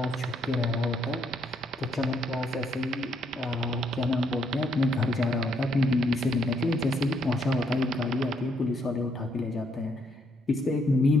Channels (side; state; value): both; normal; correlation 0.72